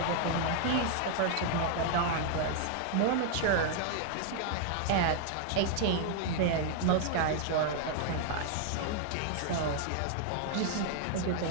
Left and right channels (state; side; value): different; both; correlation 0.00